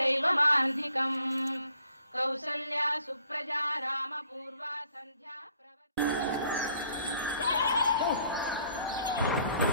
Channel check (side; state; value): both; inverted; correlation -0.62